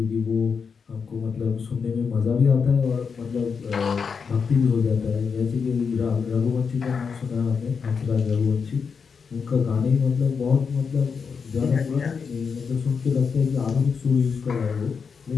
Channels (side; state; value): right; quieter; 5.8 dB